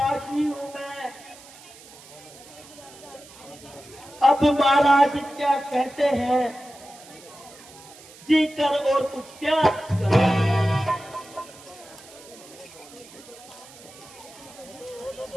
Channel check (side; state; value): right; noise; hiss, 20 dB below the sound